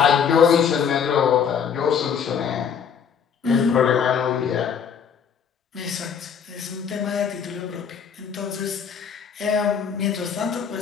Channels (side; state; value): right; quieter; 7.2 dB